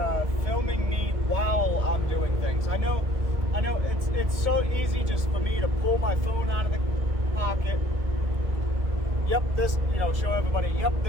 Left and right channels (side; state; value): left; late; 2.1 ms